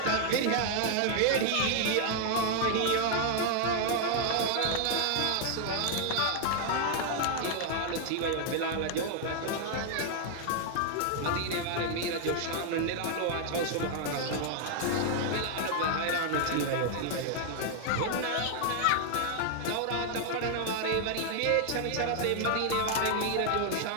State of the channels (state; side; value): different; both; correlation 0.00